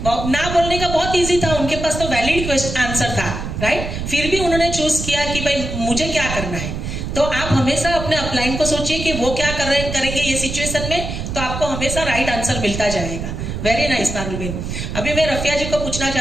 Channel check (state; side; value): noise; right; rumble, 5 dB below the sound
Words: ना बोलने का बहुत इजी था, उनके पास तो वैलिड आंसर था। राइट। फिर भी उन्होंने चूज किया कि भाई मुझे क्या करना है। तो आप हमेशा अपने अपलाइन को सोचिए कि वो क्या करेंगे ये सिचुएशन में, तो आपको हमेशा राइट आंसर मिलता जाएगा। वेरी नाइस पारुल बहन। अभी मैं रफिया जी को पूछना